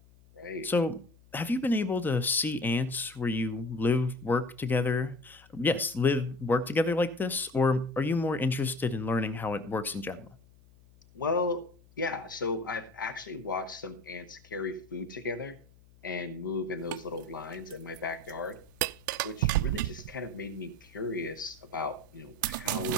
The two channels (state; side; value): noise; left; hum, 27 dB below the sound